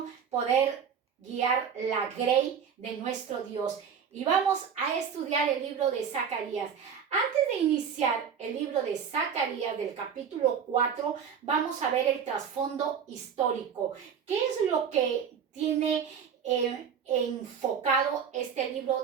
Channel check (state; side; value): quieter; left; 7.3 dB